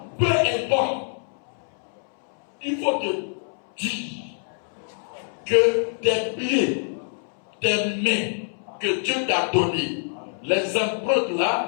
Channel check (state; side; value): silent; right; 62 dB below the other